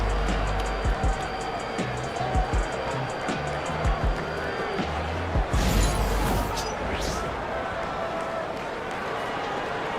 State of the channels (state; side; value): identical; both; correlation 1.00